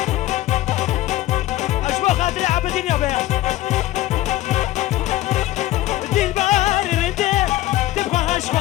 اشبه خاطري عبدين يا بيع دي البار انت تبغى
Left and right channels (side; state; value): right; quieter; 15.6 dB